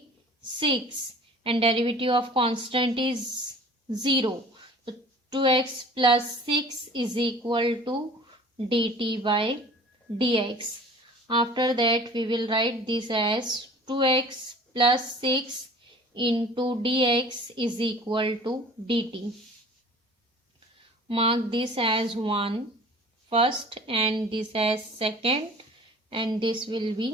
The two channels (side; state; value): both; normal; correlation 0.46